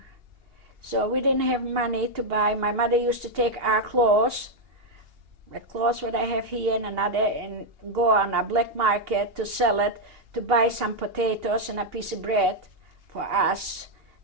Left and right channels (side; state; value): left; late; 2.8 ms